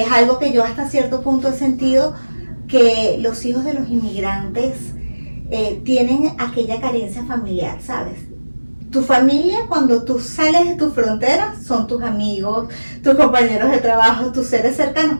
algo que yo hasta cierto punto he sentido que los hijos de los inmigrantes tienen aquella carencia familiar, ¿sabes? Tu familia, cuando tú sales de tus fronteras, son tus amigos, tus compañeros de trabajo, tus seres cercanos,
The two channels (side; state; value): both; inverted; correlation -1.00